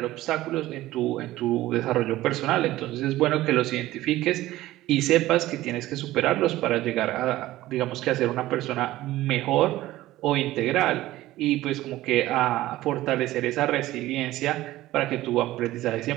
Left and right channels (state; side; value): quieter; left; 16.2 dB